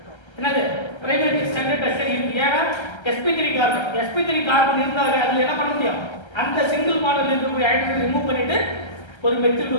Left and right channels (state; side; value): late; right; 1.3 ms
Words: என்னது? பிரைமரி செகண்டரி டெர்ஷரி இருக்கு. ஏன்னா sp3 கார்பன் இருந்தாங்க அதுல என்ன பண்ண முடியும்? அந்த சிங்கிள் மாடல்ல இருக்கக்கூடிய ஹைட்ரஜன் ரிமூவ் பண்ணிட்டு ஒரு மெத்தில்